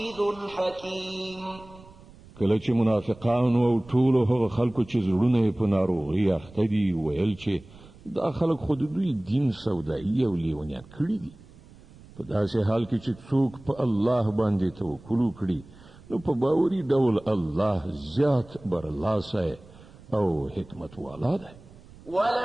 حكيم. کله چې منافقانو او ټولو هغه خلکو چې زړونه یې په ناروغۍ اخته دي ویل چې دا خلک خو د دوی دین سودایي او لیونیان کړي دي. په داسې حال کې چې څوک په الله باندې توکل وکړي نو په باوري ډول الله زیات برلاسی او حکمت والا دی.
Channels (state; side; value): noise; right; rumble, 22 dB below the sound